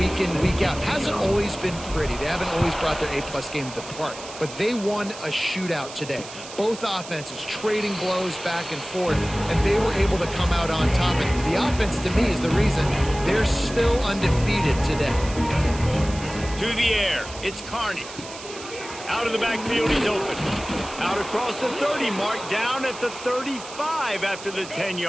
in, week out. Hasn't always been pretty. They haven't always brought their A-plus game to the park. But they won a shootout today. Both offenses trading blows back and forth, and they were able to come out on top. And the offense, to me, is the reason they're still undefeated today. To the air, it's Carney. Out of the backfield, he's open. Out across the 30 mark, down at the 35 after the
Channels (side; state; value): right; noise; hiss, 14 dB below the sound